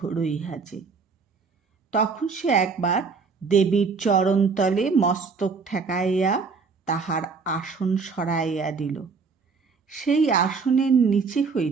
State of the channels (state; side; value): quieter; left; 5.0 dB